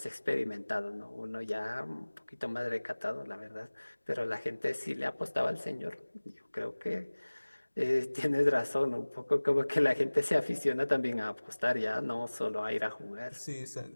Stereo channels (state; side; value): inverted; both; correlation -1.00